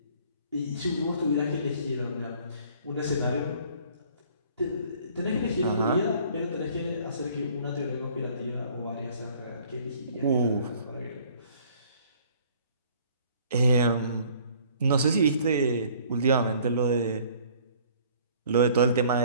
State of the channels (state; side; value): inverted; both; correlation -0.55